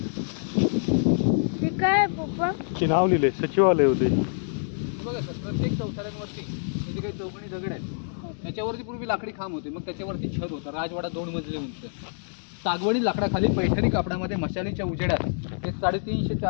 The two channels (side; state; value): right; silent; digital silence